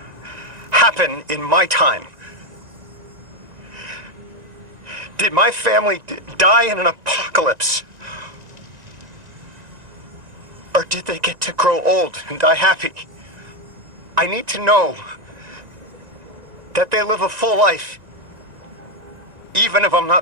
happen in my time? Did my family die in an apocalypse? Or did they get to grow old and die happy? I need to know that they live a full life, even if I'm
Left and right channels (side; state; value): left; late; 1.9 ms